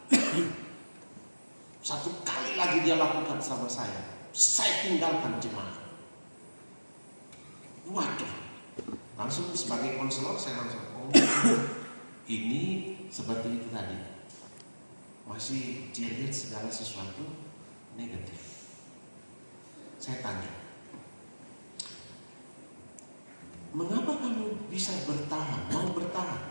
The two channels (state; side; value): inverted; both; correlation -1.00